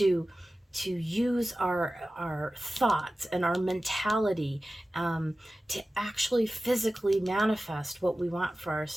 use our thoughts and our mentality to actually physically manifest what we want for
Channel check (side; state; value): both; normal; correlation 0.95